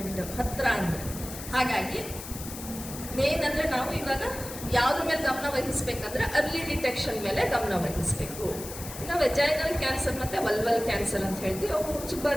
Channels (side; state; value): left; noise; hiss, 11 dB below the sound